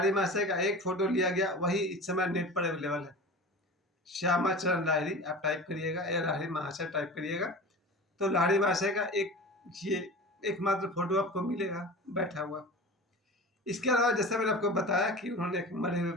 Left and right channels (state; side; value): normal; both; correlation 0.34